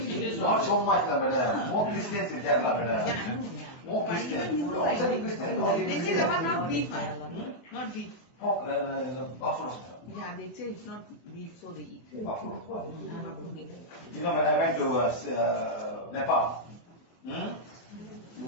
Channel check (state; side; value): late; right; 24 ms